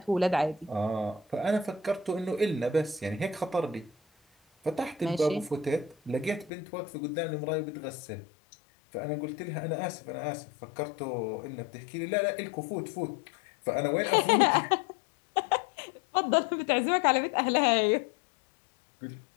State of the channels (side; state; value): right; drops out; at 6.5 s